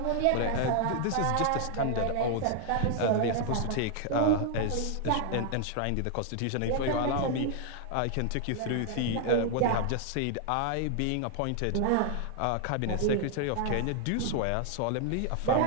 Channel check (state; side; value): different; both; correlation 0.00